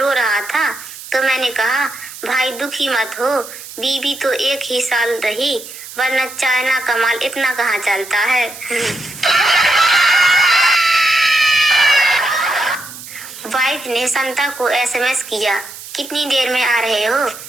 रहा था तो मैंने कहा भाई दुखी मत हो, बीवी तो 1 ही साल रही, वरना चाइना का माल इतना कहाँ चलता है। वाइफ ने संता को एसएमएस किया कितनी देर में आ रहे हो?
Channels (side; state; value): right; noise; hiss, 14 dB below the sound